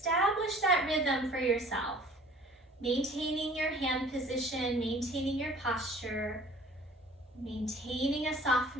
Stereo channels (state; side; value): normal; both; correlation 0.51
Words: that rhythm for yourself. Maintaining your hand position, maintaining your posture, maintaining a